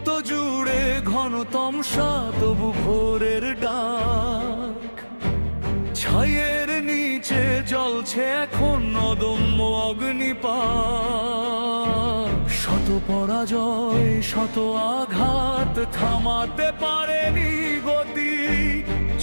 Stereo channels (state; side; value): inverted; both; correlation -1.00